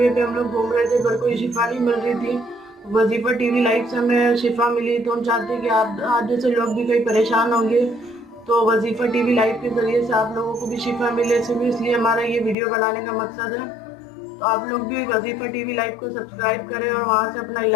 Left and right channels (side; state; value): right; drops out; at 12.6 s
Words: पे हम लोग घूम रहे थे पर कोई शिफा नहीं मिल रही थी। वजीफा टीवी लाइव से हमें शिफा मिली, तो हम चाहते हैं कि आप जैसे लोग भी कहीं परेशान होंगे तो वजीफा टीवी लाइव के जरिए से आप लोगों को भी शिफा मिले। सिर्फ इसलिए हमारा ये वीडियो बनाने का मकसद है। तो आप लोग भी वजीफा टीवी लाइव को सब्सक्राइब करें और वहाँ से अपना